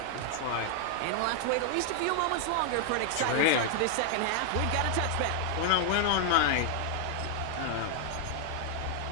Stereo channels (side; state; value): both; different; correlation 0.00